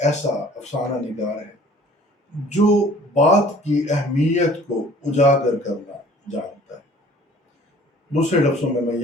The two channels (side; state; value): both; normal; correlation 0.52